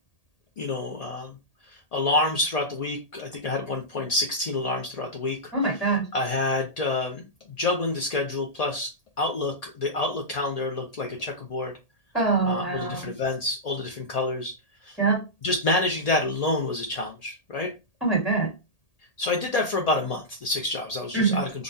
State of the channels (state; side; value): late; right; 1.8 ms